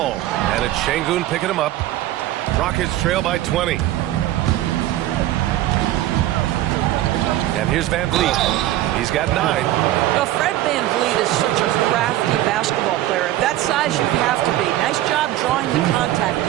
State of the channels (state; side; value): quieter; left; 14.6 dB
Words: and it's Şengün picking him up. Rockets trail by 20. And here's Van Vliet. He's got 9. Well, Fred Van Vliet is such a crafty basketball player. At that size, you have to be. Nice job drawing the contact